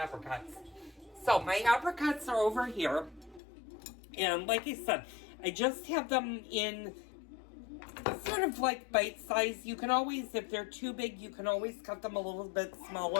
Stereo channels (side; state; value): right; drops out; at 3.4 s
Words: So my apricots are over here, and like I said, I just have them in sort of like bite size. You can always, if they're too big, you can always cut them a little bit